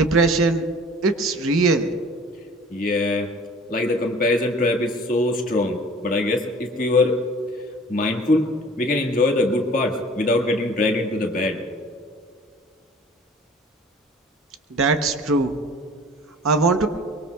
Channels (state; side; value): normal; both; correlation 0.47